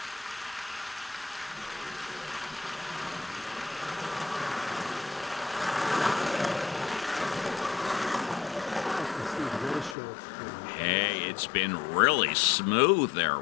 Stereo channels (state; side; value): drops out; right; at 10.0 s